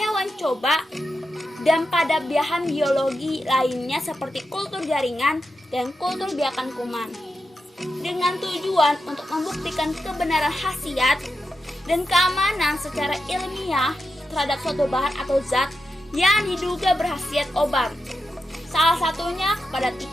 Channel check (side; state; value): both; normal; correlation 0.88